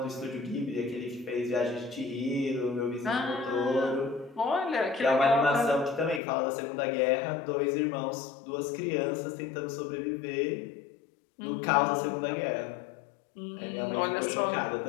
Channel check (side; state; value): right; drops out; at 6.2 s